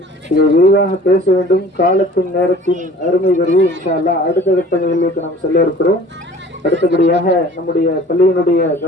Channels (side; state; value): both; normal; correlation 0.48